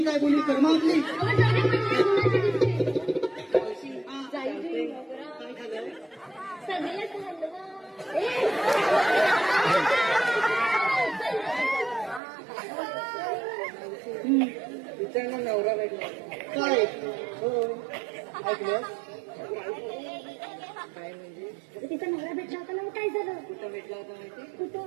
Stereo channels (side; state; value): left; drops out; at 12.2 s